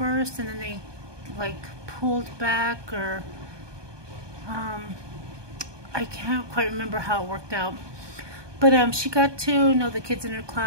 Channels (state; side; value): late; left; 1.2 ms